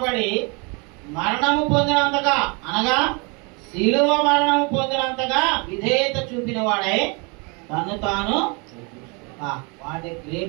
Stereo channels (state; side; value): quieter; left; 31.2 dB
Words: మరణము పొందినంతగా, అనగా శిలువ మరణము పొందినంతగా విధేయత చూపిన వాడై తను తాను వాడే